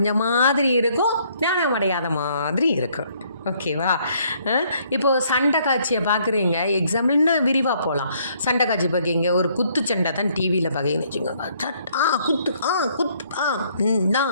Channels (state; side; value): inverted; both; correlation -0.66